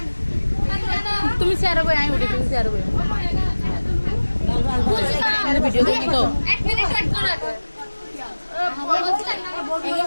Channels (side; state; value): both; inverted; correlation -1.00